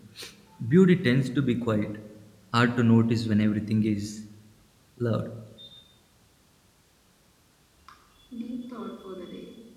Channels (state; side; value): identical; both; correlation 1.00